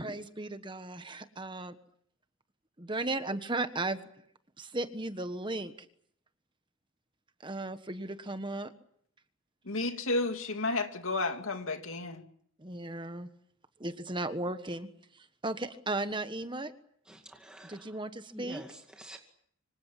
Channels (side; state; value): both; normal; correlation 0.11